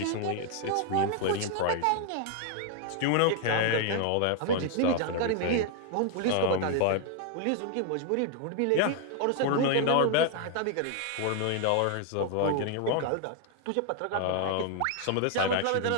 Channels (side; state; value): both; different; correlation 0.00